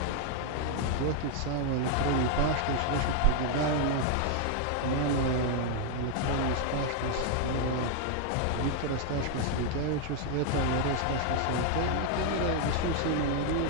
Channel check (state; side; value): different; both; correlation 0.00